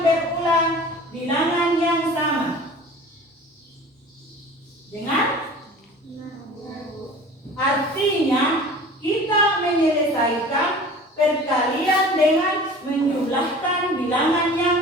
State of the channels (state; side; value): normal; both; correlation 0.42